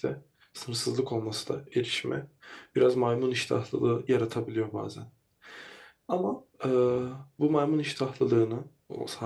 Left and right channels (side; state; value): both; identical; correlation 1.00